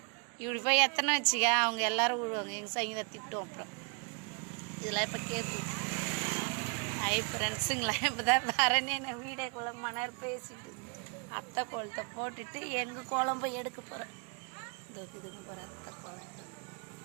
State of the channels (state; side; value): quieter; left; 36.2 dB